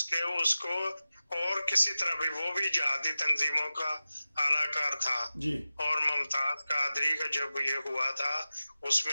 उसको और किसी तरह भी, वो भी जिहादी तंजीमों का आलाकार था जी। और मुमताज कादरी का जब ये हुआ था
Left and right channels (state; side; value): inverted; both; correlation -0.94